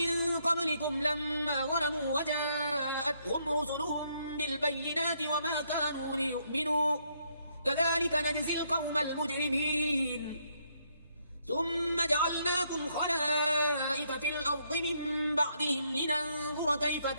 قبلكم لما ظلموا وجاءتهم رسلهم بالبينات وما كانوا ليؤمنوا كذلك نجزي القوم المجرمين ثم جعلناكم خلائف في الأرض من بعدهم لننظر كيف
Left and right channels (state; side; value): inverted; both; correlation -0.73